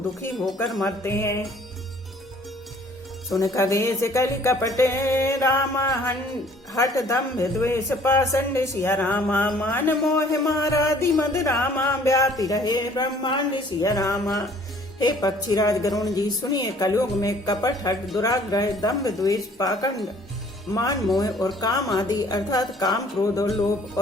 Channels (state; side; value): normal; both; correlation 0.56